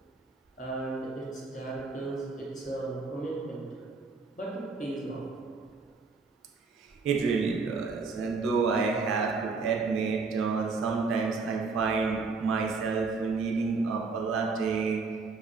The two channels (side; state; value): left; quieter; 4.3 dB